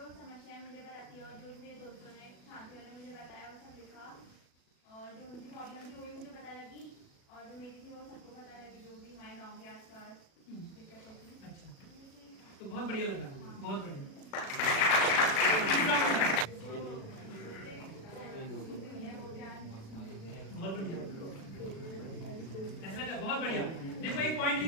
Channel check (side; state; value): right; late; 36 ms